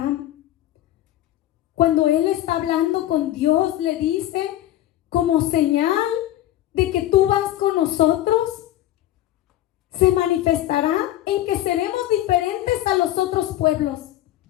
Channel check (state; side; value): quieter; right; 13.9 dB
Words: Cuando él está hablando con Dios, le dice: como señal de que tú vas con nosotros, se manifestará en que seremos diferentes a los otros pueblos.